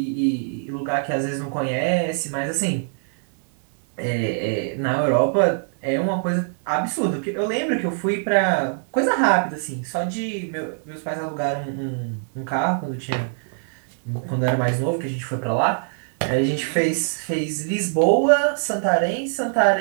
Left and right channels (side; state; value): left; silent; 63 dB below the other